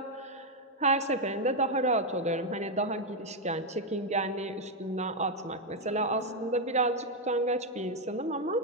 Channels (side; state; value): both; normal; correlation 0.02